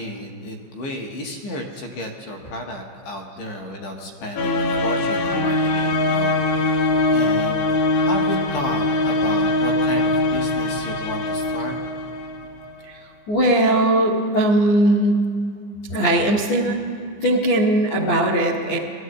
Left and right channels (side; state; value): right; late; 15 ms